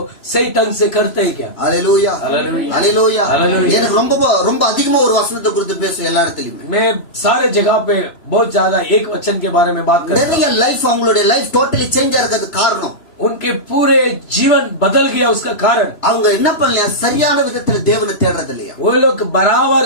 सही ढंग से करते हैं क्या? அல்லேலூயா. அல்லேலூயா. அல்லேலூயா. அல்லேலூயா. எனக்கு ரொம்ப அதிகமா ஒரு வசனத்தை குறித்து பேசுவேன் எல்லா இடத்துலயுமே. मैं सारे जगह पे बहुत ज्यादा एक वचन के बारे में बात करता हूं. நிறைய லைஃப் அவங்களுடைய லைஃப் டோட்டலி சேஞ்ச் ஆகிறது காரணம் उनके पूरे जीवन बदल गया. उसका कारण அவங்க என்ன பண்ணலையா? சரியான விதத்துல தேவனை தேடுறது இல்லையா? वो लोग बराबर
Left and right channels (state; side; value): late; right; 3.0 ms